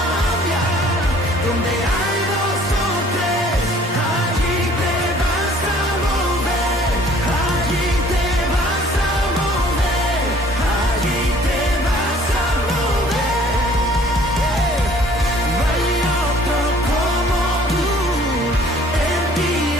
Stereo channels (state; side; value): normal; both; correlation 0.55